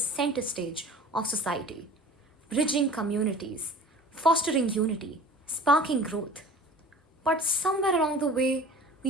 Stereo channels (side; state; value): both; normal; correlation 0.42